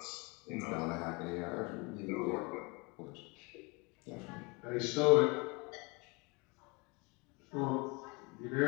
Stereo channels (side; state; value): right; quieter; 28.5 dB